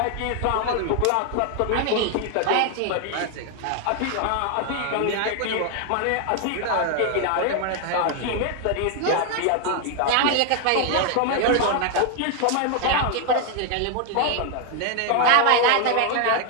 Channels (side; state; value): both; different; correlation 0.00